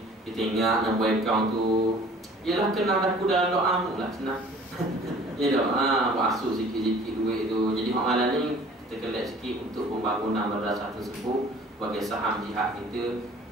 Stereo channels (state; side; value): normal; both; correlation 0.50